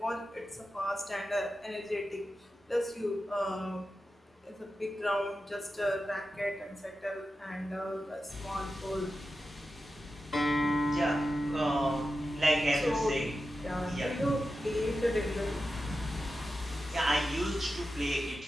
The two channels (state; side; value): normal; both; correlation 0.91